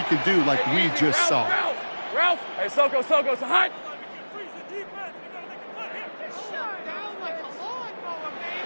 could do like we just saw. Ralph. Hey, Soko, so hot.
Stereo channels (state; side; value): inverted; both; correlation -1.00